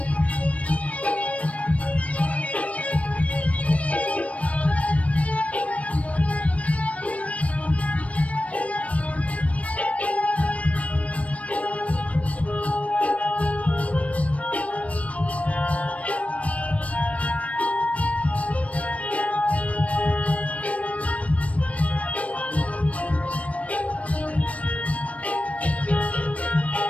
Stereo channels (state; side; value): late; right; 0.065 ms